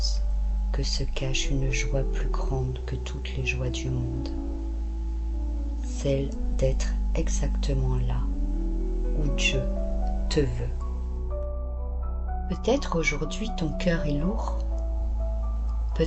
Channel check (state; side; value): identical; both; correlation 1.00